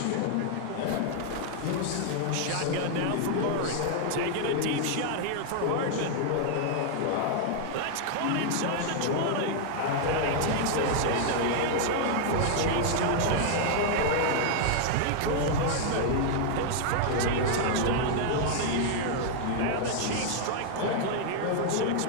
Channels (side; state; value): both; different; correlation 0.00